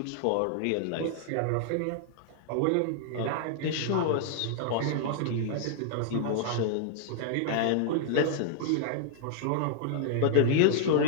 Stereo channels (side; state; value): both; different; correlation -0.01